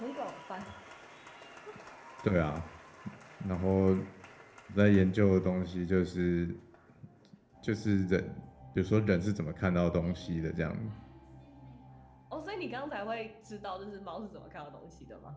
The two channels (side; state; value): both; identical; correlation 1.00